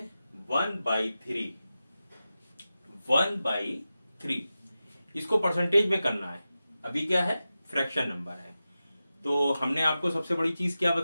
1/3। 1/3 इसको परसेंटेज में करना है। अभी क्या है, फ्रैक्शन नंबर है। तो हमने आपको सबसे बड़ी चीज क्या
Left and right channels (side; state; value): both; inverted; correlation -0.93